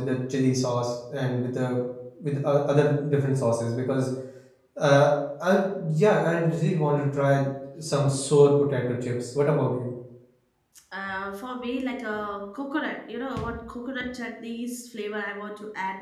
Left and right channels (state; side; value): identical; both; correlation 1.00